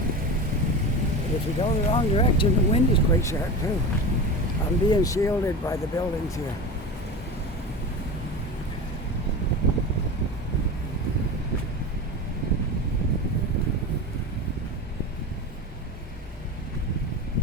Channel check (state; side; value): normal; both; correlation 0.27